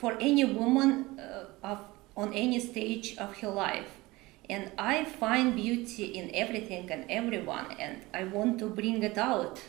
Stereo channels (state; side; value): quieter; left; 20.9 dB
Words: for any woman on any stage of her life. And I find beauty in everything and everyone, and I want to bring it out